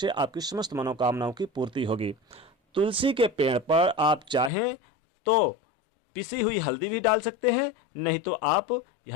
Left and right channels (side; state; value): right; drops out; at 4.5 s